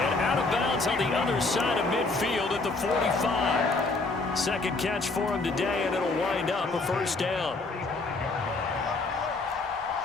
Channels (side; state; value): right; quieter; 3.5 dB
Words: out of bounds on the other side of midfield at the 45. Second catch for him today, and it'll wind up a first down.